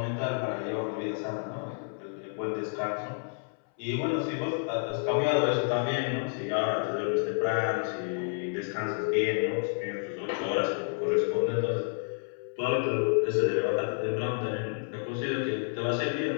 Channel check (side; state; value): right; silent; 58 dB below the other